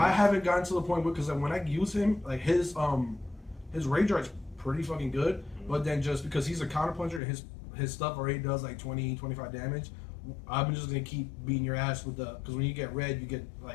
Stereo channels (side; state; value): right; drops out; at 7.2 s